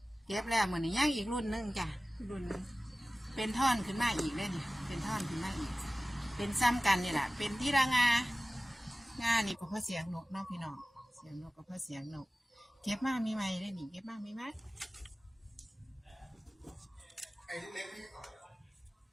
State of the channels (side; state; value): both; normal; correlation 0.97